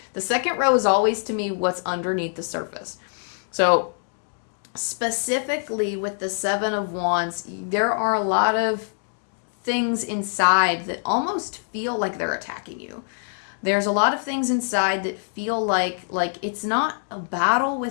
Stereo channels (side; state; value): right; silent; digital silence